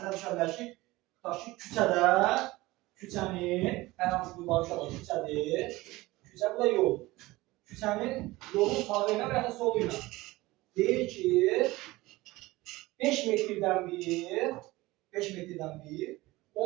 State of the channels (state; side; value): quieter; left; 19.7 dB